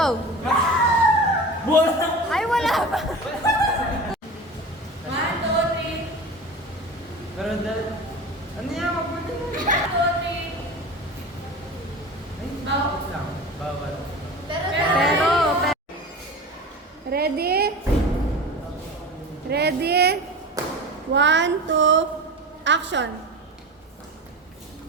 Ay, wala pa. Pero dahil, ano yan? Magpunta na. Ay, bawal lang. Bawal. Pero, ready? Ready? 1, 2, action.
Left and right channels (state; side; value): normal; both; correlation 0.31